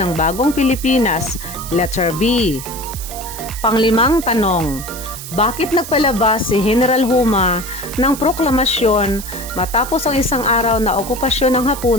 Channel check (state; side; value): noise; right; hiss, 11 dB below the sound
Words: bagong Pilipinas. Letter B. Panglimang tanong. Bakit nagpalabas si General Huma ng proklamasyon matapos ang 1 araw na okupasyon ng